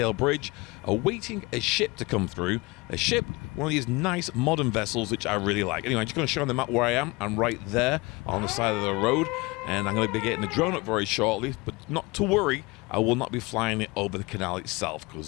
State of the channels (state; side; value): quieter; right; 24.7 dB